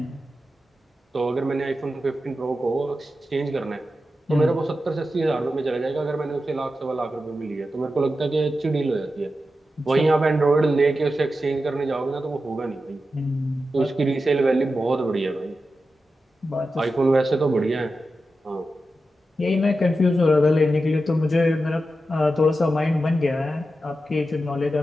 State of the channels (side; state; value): both; normal; correlation 0.91